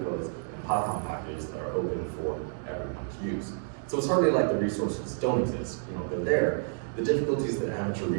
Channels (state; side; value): silent; left; digital silence